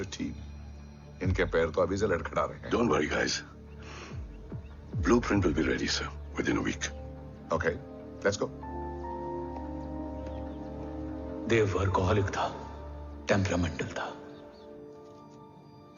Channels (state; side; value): identical; both; correlation 1.00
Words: team? इनके पैर तो अभी से लड़खड़ा रहे हैं। Don't worry, guys. Blueprint will be ready, sir, within a week. Okay, let's go. Dev workaholic था, टेम्परामेंटल था।